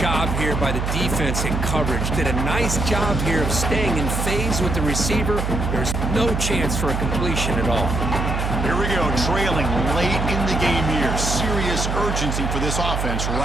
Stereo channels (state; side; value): noise; right; hum, 1 dB below the sound